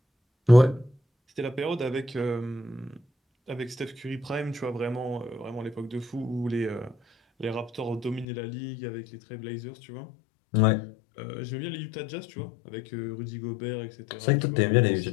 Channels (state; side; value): drops out; right; at 8.2 s